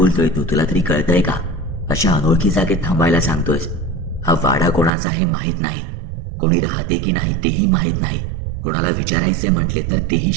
तू, तुला तरी कळतंय का? अशा अनोळखी जागेत थांबायला सांगतोयस? हा वाडा कोणाचा हे माहीत नाही, कोणी राहते की नाही तेही माहीत नाही, कोणाला विचारायचे म्हटले तर तेही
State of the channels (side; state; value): left; drops out; at 4.9 s